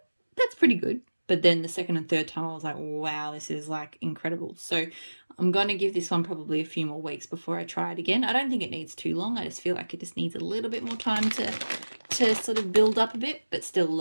that's pretty good. But then the second and third time I was like, wow, this is like incredible. So I'm going to give this one probably a few more weeks before I try it again. I don't think it needs too long. I just feel like it just needs a little bit more time to sort of build up a bit, but still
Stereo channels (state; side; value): inverted; both; correlation -1.00